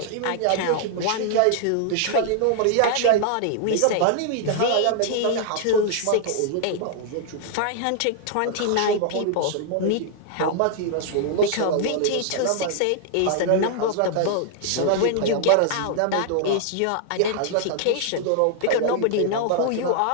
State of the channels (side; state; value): both; different; correlation 0.00